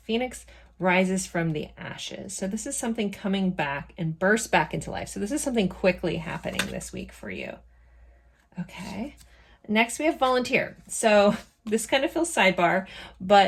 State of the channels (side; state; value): both; identical; correlation 1.00